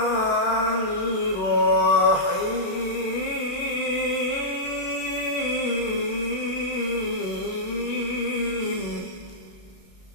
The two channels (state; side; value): late; right; 36 ms